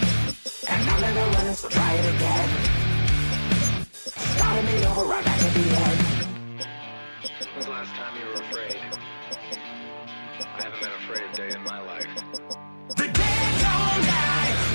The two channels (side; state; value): both; inverted; correlation -1.00